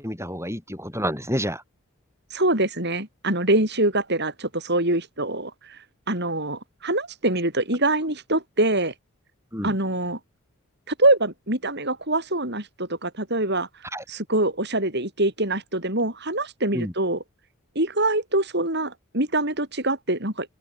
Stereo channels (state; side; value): normal; both; correlation -0.12